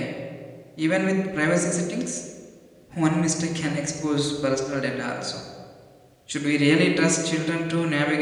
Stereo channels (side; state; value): both; identical; correlation 1.00